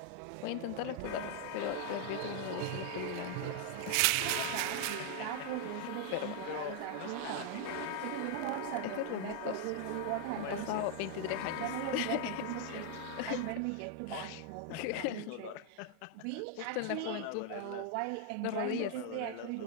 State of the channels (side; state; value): both; different; correlation 0.00